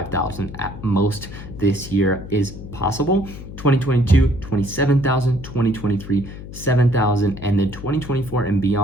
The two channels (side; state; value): left; noise; hum, 12 dB below the sound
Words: at most this year is possible. 2022, 27,000, 2023, 7,000, and then 2024 and